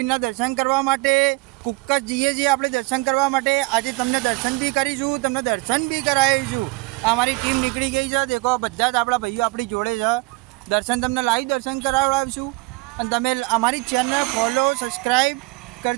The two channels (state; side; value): quieter; left; 24.7 dB